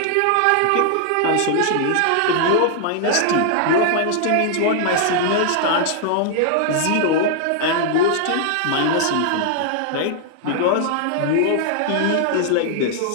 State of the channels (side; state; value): both; different; correlation 0.00